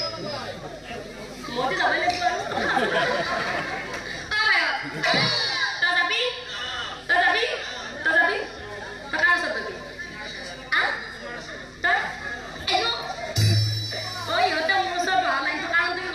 মইতো যাবই লাগিব আৰু তই যাবি তই যাবি তই যাবি তই কাৰ ওচৰত যাবি তই এনো ইহঁতে মোৰ ওচৰত বহা নাই কাৰণটো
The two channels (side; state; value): both; identical; correlation 1.00